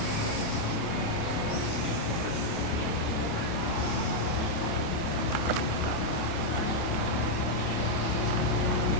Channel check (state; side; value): late; right; 28 ms